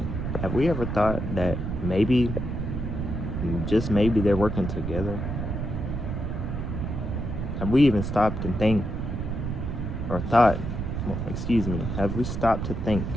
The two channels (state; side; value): noise; right; rumble, 3 dB below the sound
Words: have we ever thought that maybe, just maybe, they're working together? Have we even stopped and think, or thought, have we stopped to think